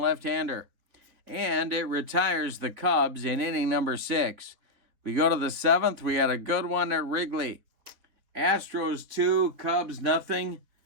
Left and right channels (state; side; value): late; left; 4.1 ms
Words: And it retires the Cubs in inning number 6. We go to the 7th. We had a good one at Wrigley. Astros 2, Cubs nothing.